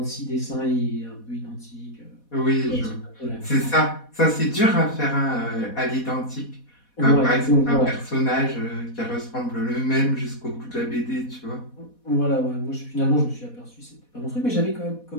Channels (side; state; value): right; late; 4.1 ms